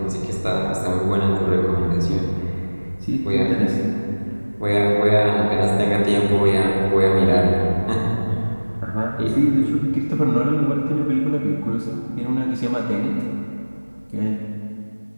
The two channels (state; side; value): inverted; both; correlation -1.00